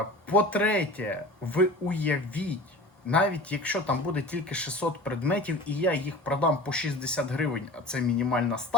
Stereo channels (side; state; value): both; normal; correlation 0.39